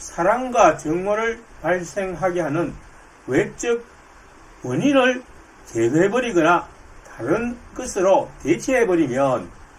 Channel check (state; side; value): identical; both; correlation 1.00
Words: 정오를 발생하게 하는 외적 원인을 제거해버리거나 다른 것으로 대체해버리면